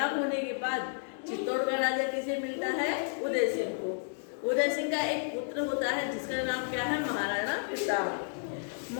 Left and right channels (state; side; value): silent; right; digital silence